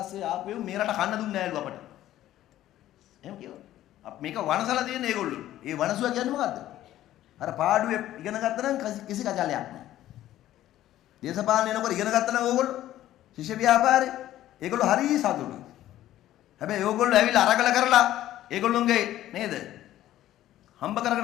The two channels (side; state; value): right; quieter; 13.5 dB